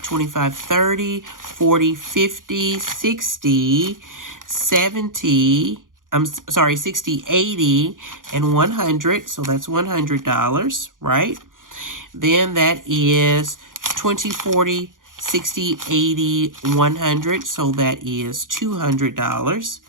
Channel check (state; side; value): late; left; 0.89 ms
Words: 30, 40, 50, 60, 70, 60, 80, and 100. So that's $100, right? Then that is 20, 40, 60, 80, 100. So that is $200.